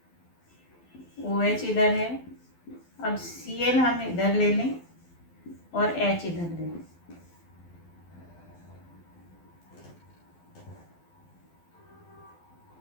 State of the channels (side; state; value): right; late; 12 ms